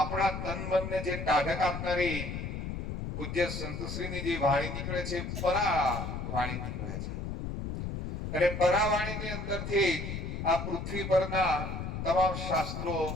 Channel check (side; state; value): left; noise; rumble, 5 dB below the sound